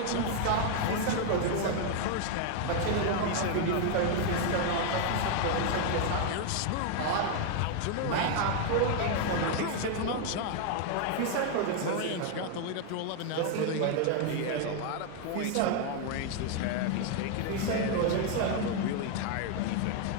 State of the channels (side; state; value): both; different; correlation 0.00